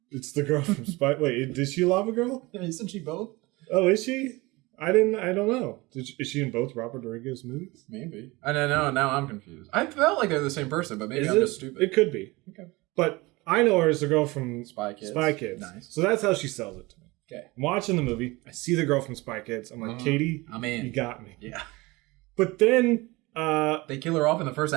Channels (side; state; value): left; quieter; 22.6 dB